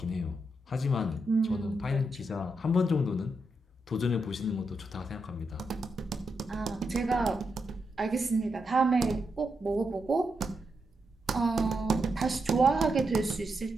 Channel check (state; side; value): normal; both; correlation 0.84